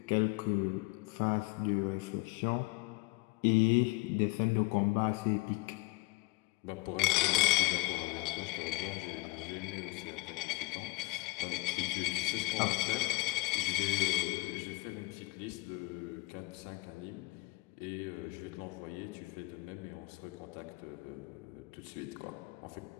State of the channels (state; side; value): quieter; right; 23.1 dB